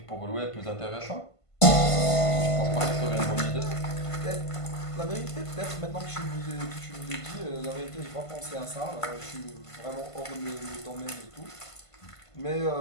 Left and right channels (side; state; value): right; late; 1.5 ms